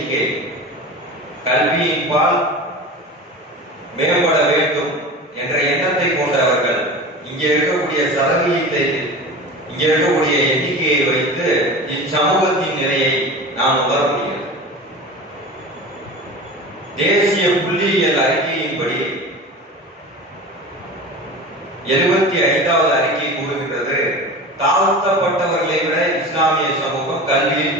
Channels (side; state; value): both; normal; correlation 0.33